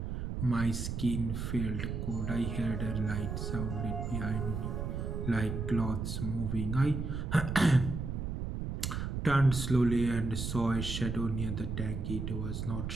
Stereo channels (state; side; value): noise; right; rumble, 3 dB below the sound